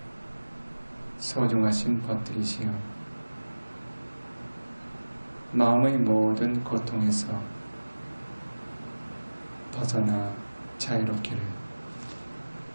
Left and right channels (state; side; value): inverted; both; correlation -1.00